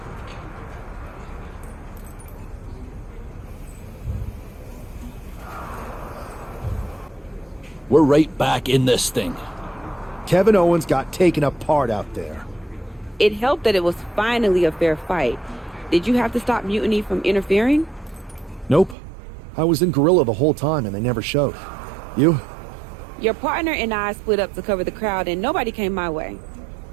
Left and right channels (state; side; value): drops out; left; at 18.9 s